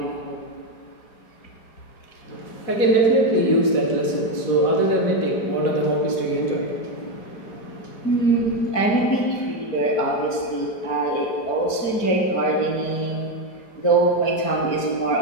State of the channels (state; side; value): late; right; 4.8 ms